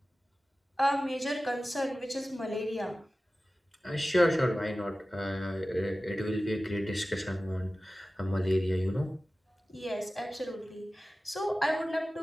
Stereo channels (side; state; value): both; normal; correlation 0.96